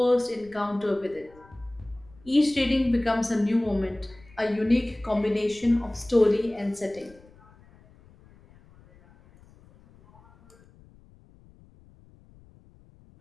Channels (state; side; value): noise; left; rumble, 26 dB below the sound